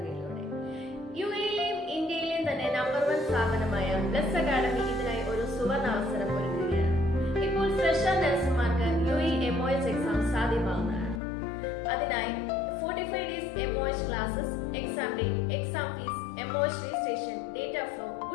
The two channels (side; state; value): right; drops out; at 11.2 s